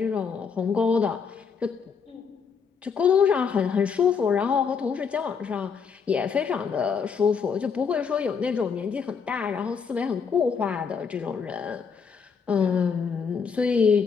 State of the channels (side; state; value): right; quieter; 6.1 dB